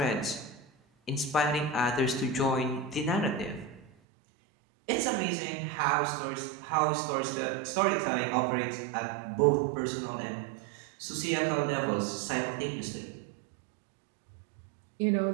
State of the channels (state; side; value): drops out; left; at 3.9 s